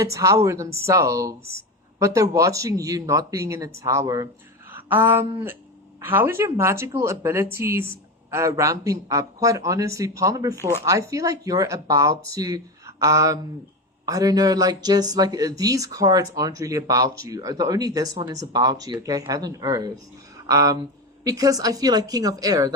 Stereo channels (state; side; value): normal; both; correlation 0.19